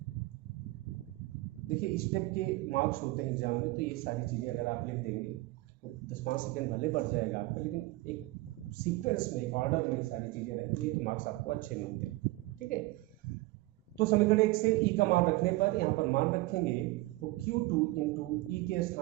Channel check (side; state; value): left; quieter; 19.9 dB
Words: देखिए स्टेप के मार्क्स होते हैं एग्जाम में, तो ये सारी चीज़ें अगर आप लिख देंगे तो 10-5 सेकेंड भले बढ़ जाएगा आपका, लेकिन एक सीक्वेंस में, एक ऑर्डर में सारी चीज़ें रहती है तो मार्क्स आपको अच्छे मिलते हैं। ठीक है। तो समीकरण 1 से E का मान रखने पर, यहाँ पर मान रखेंगे तो Q2 इंटू E के